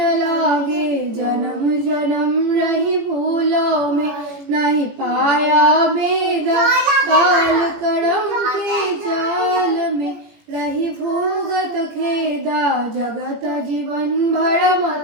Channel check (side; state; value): left; late; 18 ms